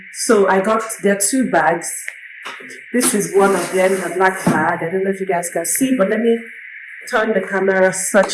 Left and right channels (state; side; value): identical; both; correlation 1.00